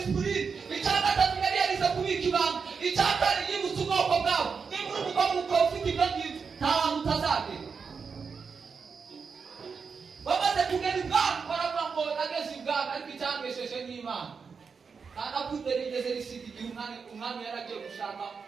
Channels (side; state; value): left; quieter; 5.5 dB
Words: icya gatatu yari yarize kubika ibanga icya kane yibutse ubwoko bwabo niba uri umugabo ukaba ufite ibyo ngibyo nta hantu utazagera bamaze kugera ibwami baravuga ngo nageze ibwami ariko icyangesheje n'Imana kandi akundera igeze risiga igihe umwami yaragiye gushaka